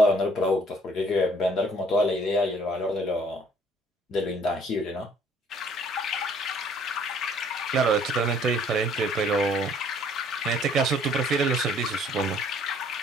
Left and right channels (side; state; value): both; normal; correlation 0.59